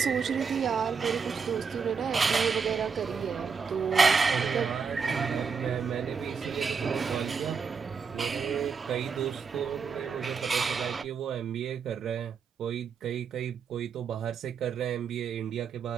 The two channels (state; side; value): quieter; left; 5.8 dB